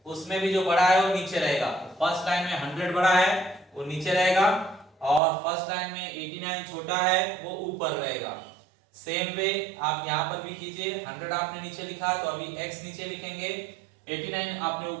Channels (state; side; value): drops out; left; at 5.2 s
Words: उसमें भी जो बड़ा है वो नीचे रहेगा। फर्स्ट लाइन में 100 बड़ा है वो नीचे रहेगा, और फर्स्ट लाइन में 89 छोटा है वो ऊपर रहेगा। सेम वे आप यहां पर भी कीजिए। 100 आपने नीचे लिखा तो अभी x नीचे लिखेंगे, 89 आपने